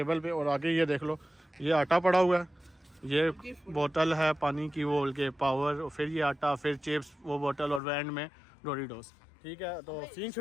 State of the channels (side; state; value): right; drops out; at 7.8 s